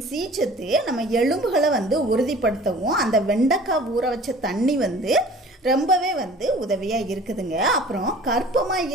சி சத்து நம்ம எலும்புகளை வந்து உறுதிப்படுத்தவும் அந்த வெண்டைக்காய் ஊற வச்ச தண்ணி வந்து ரொம்பவே வந்து உதவியாக இருக்குதுங்க. அப்புறம் கர்ப்பமாக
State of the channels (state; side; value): normal; both; correlation 0.46